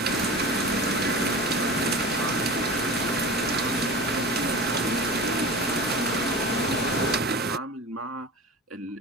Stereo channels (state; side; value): normal; both; correlation 0.33